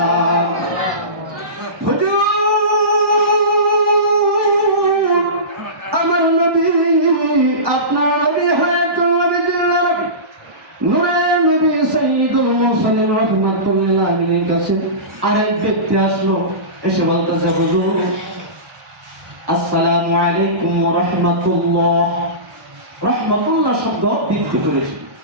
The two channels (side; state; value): left; late; 1.1 ms